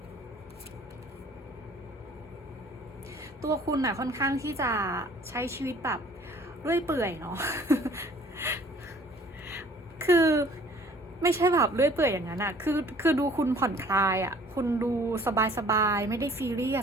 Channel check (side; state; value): both; normal; correlation 0.54